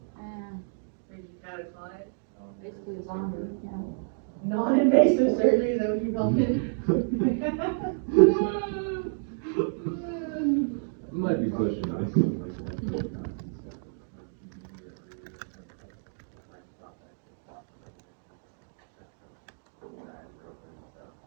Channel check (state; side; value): silent; left; digital silence